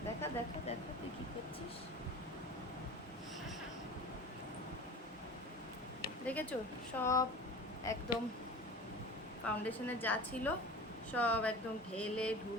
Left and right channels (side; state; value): both; normal; correlation 0.36